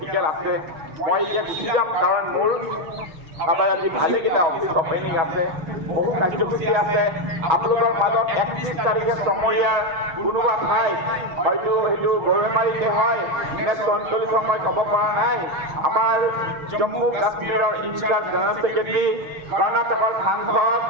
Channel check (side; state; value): left; late; 6.3 ms